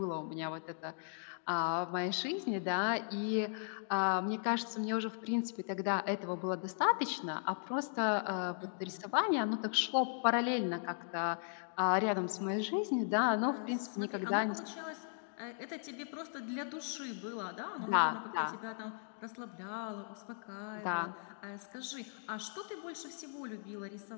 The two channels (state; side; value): silent; right; digital silence